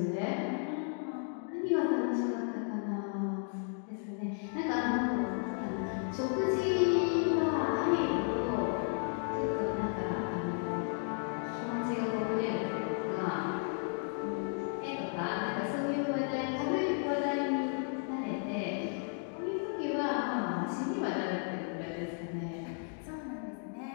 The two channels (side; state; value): right; silent; 55 dB below the other